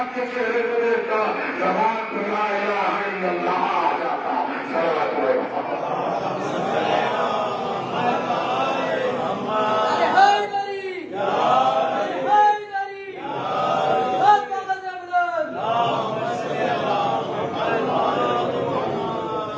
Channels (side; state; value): both; identical; correlation 1.00